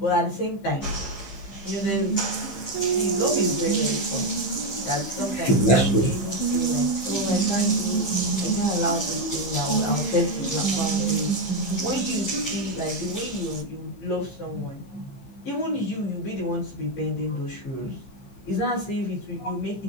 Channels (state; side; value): late; right; 15 ms